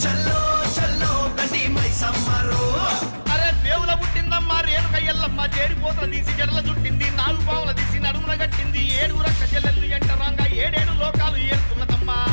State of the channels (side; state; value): both; inverted; correlation -1.00